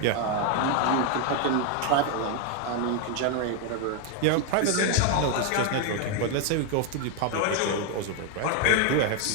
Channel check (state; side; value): different; both; correlation 0.01